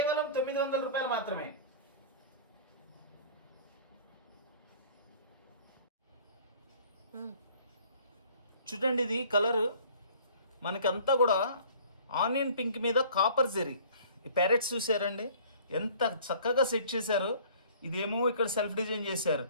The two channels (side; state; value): both; inverted; correlation -0.50